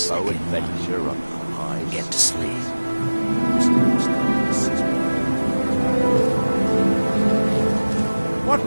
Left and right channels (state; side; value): inverted; both; correlation -1.00